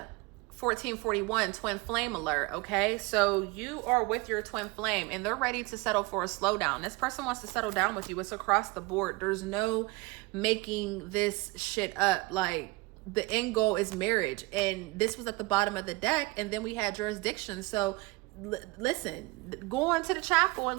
1441 twin flame alert, okay? So you are with your twin flame, and they're ready to settle for a slowdown. This person wants to settle down with you. It's across the board. There's no making this shit up. Like, the end goal is marriage, and this was at the bottom of the deck, and then we had jurisdiction. So listen, going to the chapel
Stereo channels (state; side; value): quieter; left; 23.3 dB